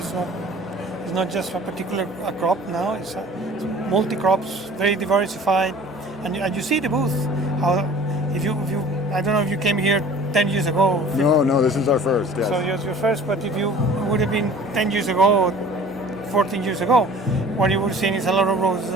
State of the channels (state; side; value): normal; both; correlation 0.46